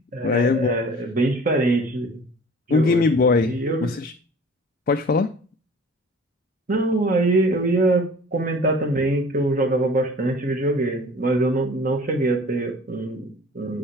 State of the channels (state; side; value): normal; both; correlation 0.46